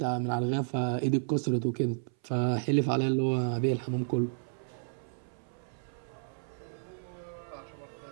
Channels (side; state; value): left; silent; 56 dB below the other